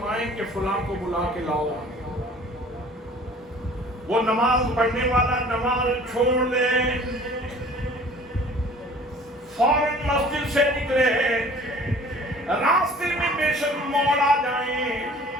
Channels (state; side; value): normal; both; correlation 0.49